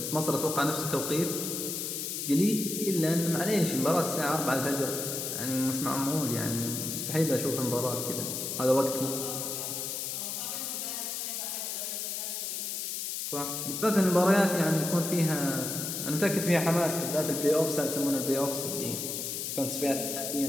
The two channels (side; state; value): left; noise; hiss, 3 dB below the sound